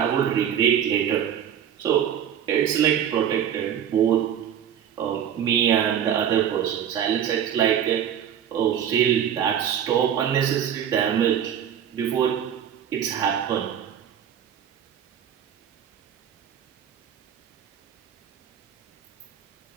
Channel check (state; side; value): quieter; left; 9.3 dB